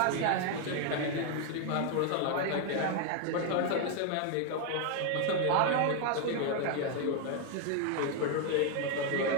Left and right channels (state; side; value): different; both; correlation 0.00